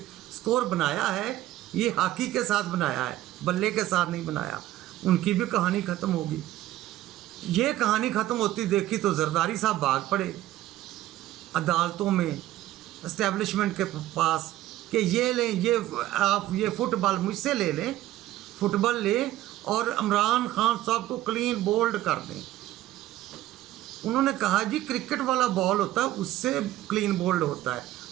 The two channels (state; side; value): quieter; left; 14.7 dB